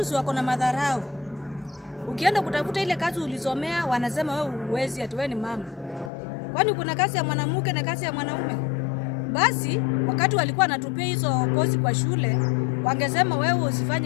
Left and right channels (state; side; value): drops out; right; at 6.1 s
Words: si wako na madharau. Ukienda kutafuta ile kazi ulisomea wanasema wewe huwezi ati wewe ni mama. Kwani kuna kazi ya mwanamke na kazi ya mwanaume? Basi wakati walikuwa wanatupia hizo kozi kwa shule, wangesema wewe